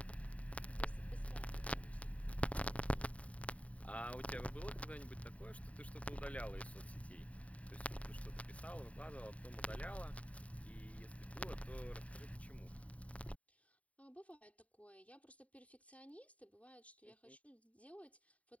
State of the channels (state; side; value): late; right; 0.067 ms